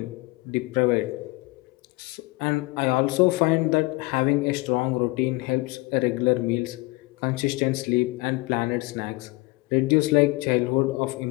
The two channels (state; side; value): quieter; right; 23.7 dB